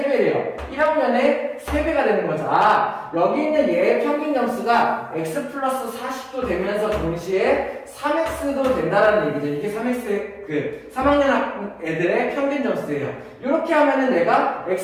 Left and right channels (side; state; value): both; identical; correlation 1.00